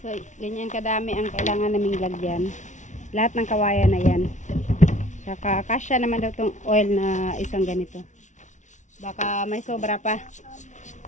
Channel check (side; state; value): right; late; 0.36 ms